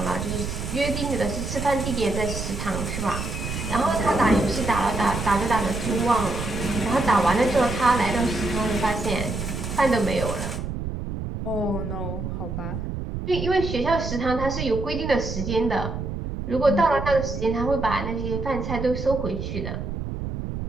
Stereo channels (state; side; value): noise; right; rumble, 5 dB below the sound